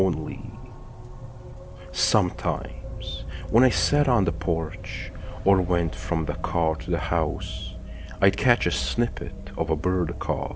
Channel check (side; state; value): both; identical; correlation 1.00